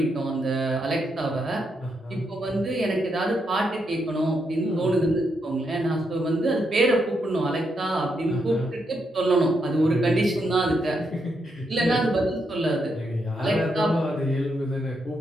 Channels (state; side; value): normal; both; correlation 0.80